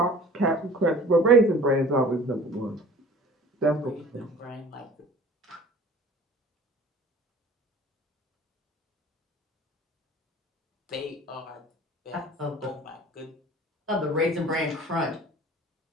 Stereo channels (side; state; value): both; normal; correlation 0.45